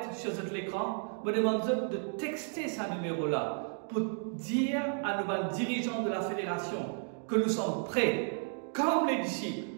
sur l'écran, je vous demande de texter ce numéro-là pour dire à nos dirigeants de la fédération que nous sommes prêts, comme les disciples,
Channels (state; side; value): silent; left; 56 dB below the other